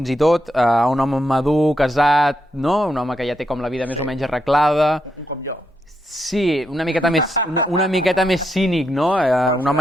i tot, un home madur, casat, no? Un home que ja té com la vida més o menys arreglada. Com jo. Sí, una miqueta més cínic, no? Un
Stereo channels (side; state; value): both; normal; correlation 0.81